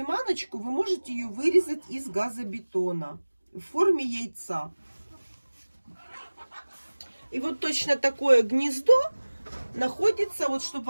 вы можете ее вырезать из газобетона в форме яйца. И вот точно такое гнездо находится, вот чтобы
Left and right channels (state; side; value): inverted; both; correlation -1.00